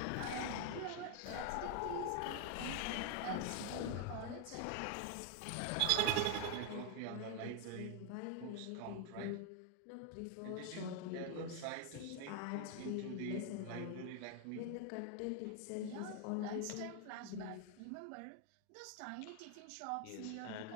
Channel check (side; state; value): both; different; correlation 0.00